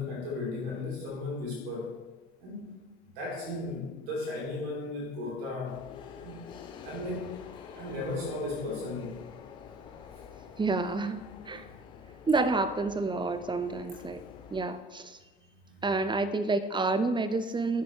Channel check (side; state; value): both; normal; correlation 0.49